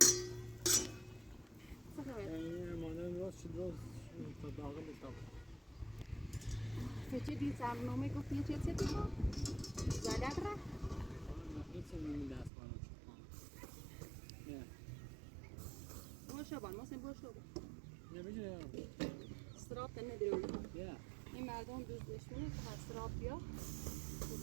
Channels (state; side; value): drops out; left; at 12.5 s